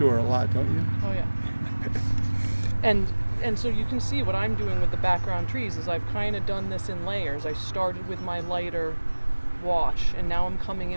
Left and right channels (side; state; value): both; inverted; correlation -1.00